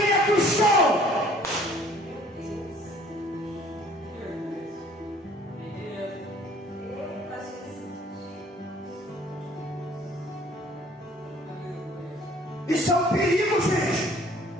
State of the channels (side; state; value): both; normal; correlation 0.56